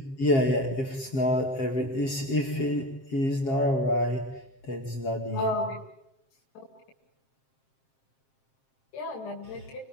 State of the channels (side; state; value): right; late; 7.5 ms